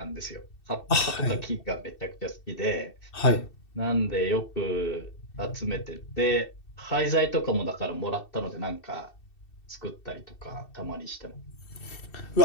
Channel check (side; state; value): right; late; 2.7 ms